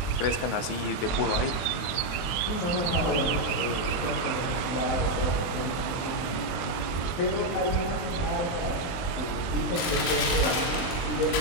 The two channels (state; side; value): late; right; 22 ms